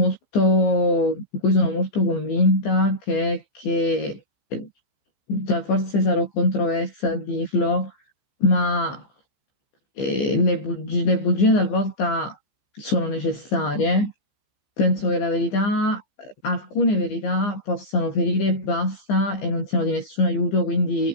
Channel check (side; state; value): right; late; 15 ms